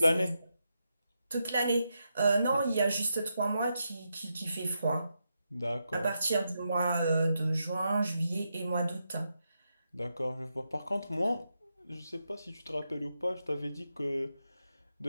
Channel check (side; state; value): both; inverted; correlation -0.85